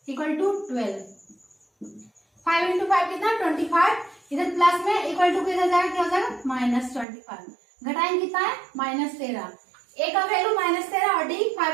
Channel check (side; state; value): left; drops out; at 7.1 s